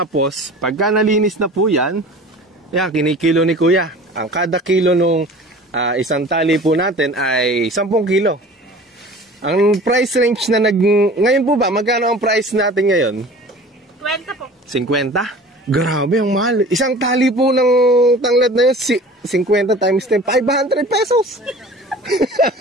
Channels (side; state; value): both; normal; correlation 0.42